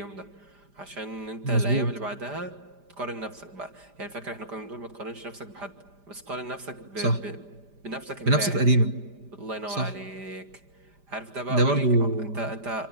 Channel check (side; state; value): left; late; 5.0 ms